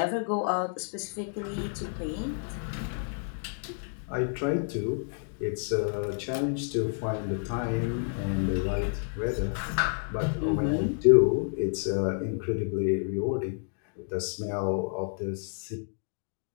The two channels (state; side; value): silent; right; 58 dB below the other